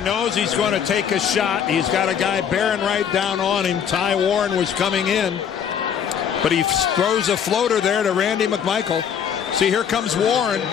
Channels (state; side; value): quieter; right; 8.2 dB